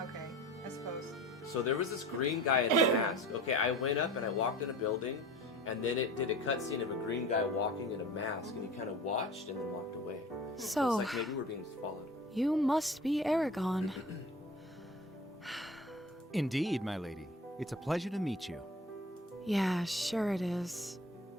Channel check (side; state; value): both; normal; correlation 0.39